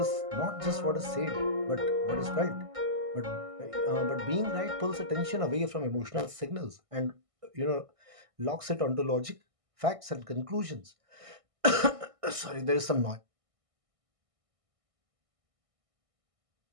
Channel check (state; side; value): late; left; 1.6 ms